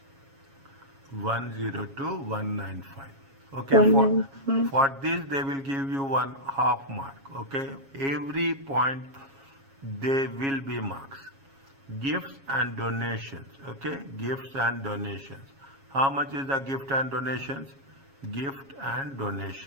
102,195. Okay, for this they will give you one half mark. Okay, every point they will be marks. Gifts and donations. Okay, gifts and donations. How much is the gift and donations? Gift and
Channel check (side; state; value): left; late; 7.3 ms